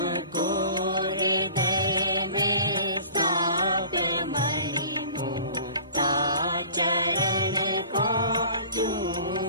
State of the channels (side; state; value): both; inverted; correlation -0.45